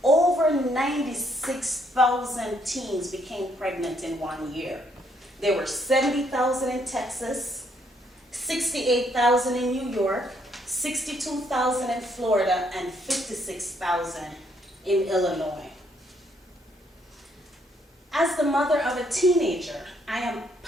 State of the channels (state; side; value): normal; both; correlation 0.70